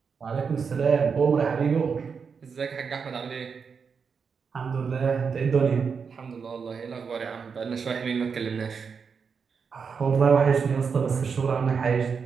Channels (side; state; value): left; quieter; 5.9 dB